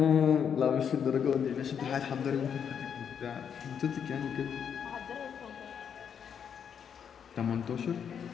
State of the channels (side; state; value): right; quieter; 7.7 dB